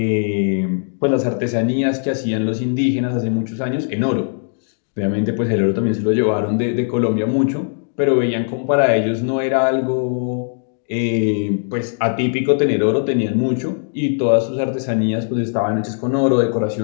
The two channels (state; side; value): silent; right; digital silence